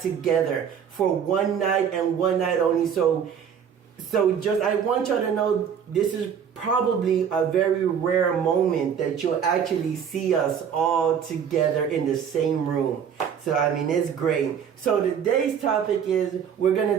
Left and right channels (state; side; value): quieter; left; 7.9 dB